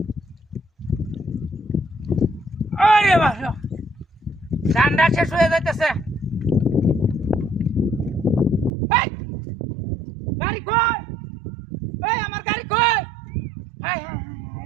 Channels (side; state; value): left; drops out; at 8.7 s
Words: আরে বাপ রে বাপ, ঠান্ডা শেষ হয়ে যাইতেছে। গাড়ি কই? এই আমার গাড়ি কই? হায় হায় হায়